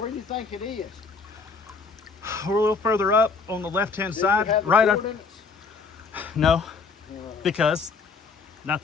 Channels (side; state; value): right; quieter; 4.7 dB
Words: do you think it is? We're a little further up on the left-hand Do side, you have the right up. coordinates? No, Uh, because